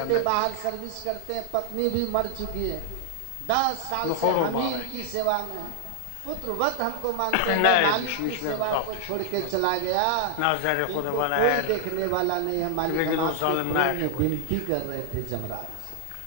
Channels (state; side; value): different; both; correlation 0.00